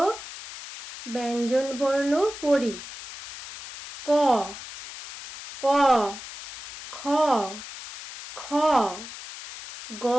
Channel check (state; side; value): noise; left; hiss, 13 dB below the sound